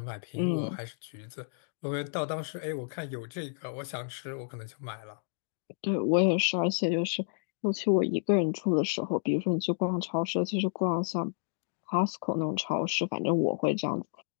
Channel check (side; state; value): right; silent; digital silence